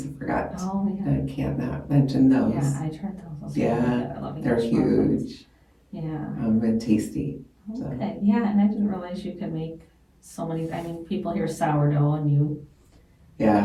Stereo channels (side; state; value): both; identical; correlation 1.00